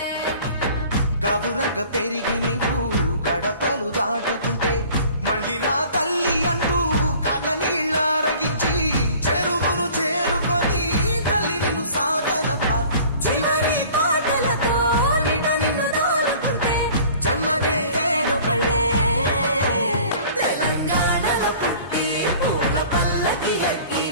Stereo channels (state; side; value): inverted; both; correlation -0.48